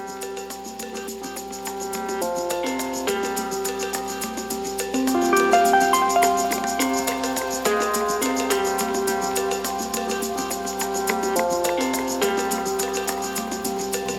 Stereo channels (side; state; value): both; identical; correlation 1.00